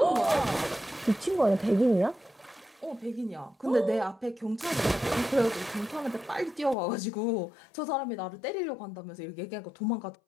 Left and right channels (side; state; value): right; drops out; at 6.8 s